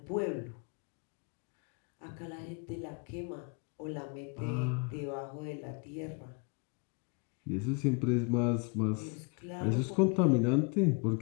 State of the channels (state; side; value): quieter; right; 33.2 dB